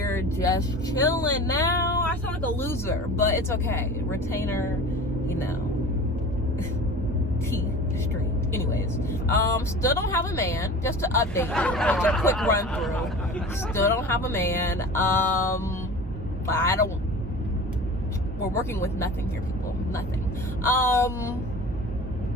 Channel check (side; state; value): both; normal; correlation 0.38